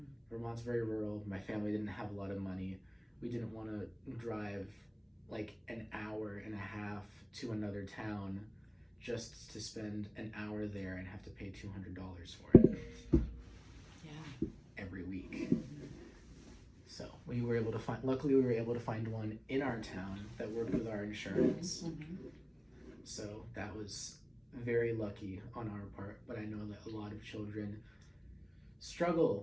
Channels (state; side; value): identical; both; correlation 1.00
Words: Vermont's very rural. My family didn't have a lot of money. We didn't want to drive like an hour and a half to another town just to spend an hour there and have to pay $200 for it. Yeah. Every week. So luckily we were able to find one in our town that worked with our insurance. Mm-hmm. So that was very lucky on our part, but I know that a lot of children